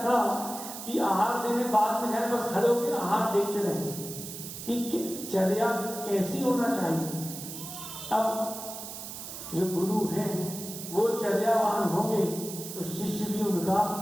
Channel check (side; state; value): right; noise; hiss, 10 dB below the sound